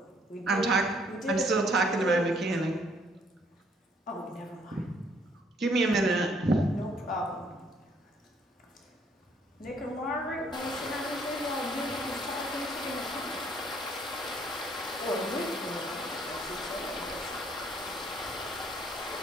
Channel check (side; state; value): both; normal; correlation 0.65